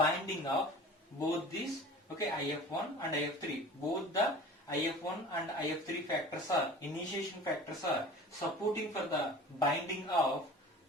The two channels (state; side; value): normal; both; correlation 0.41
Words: of both these, okay, IF1 and IF3. Both the IF1 and IF3 factors are, initiation factors are supporting for the binding of